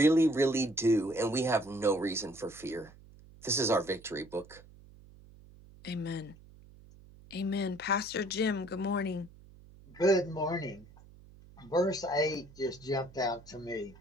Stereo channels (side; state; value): right; noise; hum, 22 dB below the sound